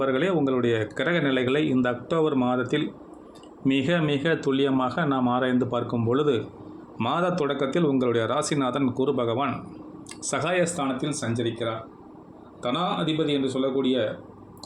உங்களுடைய கிரக நிலைகளை இந்த அக்டோபர் மாதத்தில் மிக மிக துல்லியமாக நாம் ஆராய்ந்து பார்க்கும் பொழுது, மாத தொடக்கத்தில் உங்களுடைய ராசிநாதன் குரு பகவான் சகாயஸ்தானத்தில் சஞ்சரிக்கிறார். தனா அதிபதி என்று சொல்லக்கூடிய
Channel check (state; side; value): identical; both; correlation 1.00